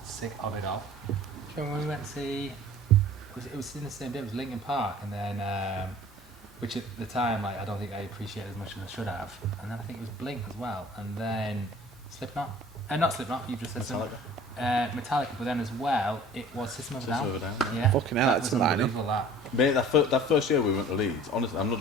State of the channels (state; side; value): normal; both; correlation 0.47